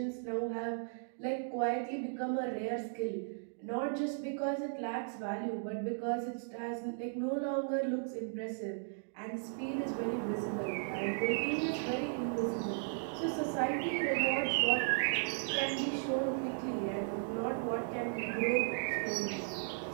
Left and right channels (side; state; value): left; silent; digital silence